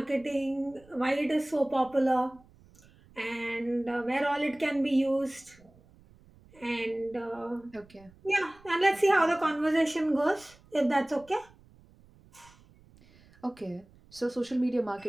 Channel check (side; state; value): right; noise; rumble, 27 dB below the sound